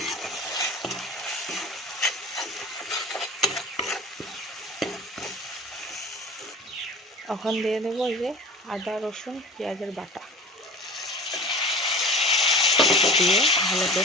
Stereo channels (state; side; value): normal; both; correlation 0.39